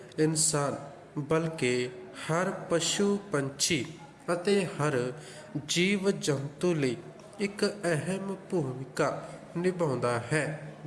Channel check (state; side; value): identical; both; correlation 1.00